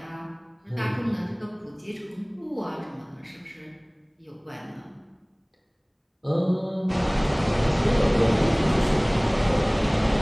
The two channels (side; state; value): both; identical; correlation 1.00